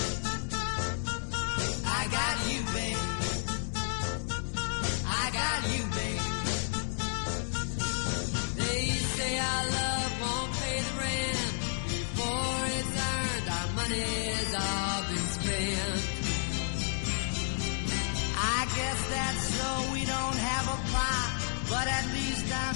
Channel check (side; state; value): right; silent; digital silence